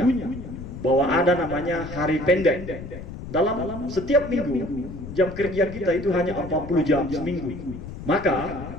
bahwa ada namanya hari pendek. Dalam setiap minggu jam kerja kita itu hanya 40 jam seminggu. Maka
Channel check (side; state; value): left; noise; rumble, 11 dB below the sound